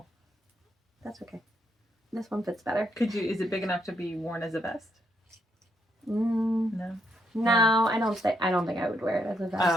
That's okay. This one fits better. Is it big enough to be worn as a vest? No. No, I don't think I would wear it as a vest.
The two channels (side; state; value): both; normal; correlation 0.76